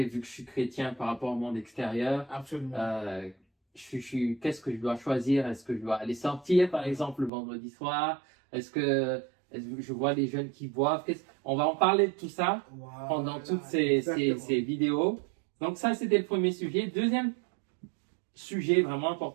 vu que je suis chrétien par rapport au monde extérieur. Absolument. Qu'est-ce que je dois choisir? Est-ce que je dois aller sortir par exemple le vendredi soir? Est-ce que je vois les jeunes qui boivent? On va en parler de tout ça pendant toutes ces vidéos. Donc ça c'était le premier sujet. Deuxième sujet vraiment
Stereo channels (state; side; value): drops out; left; at 7.3 s